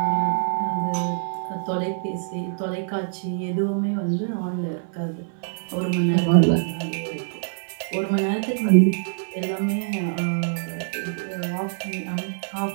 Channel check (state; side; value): silent; left; 62 dB below the other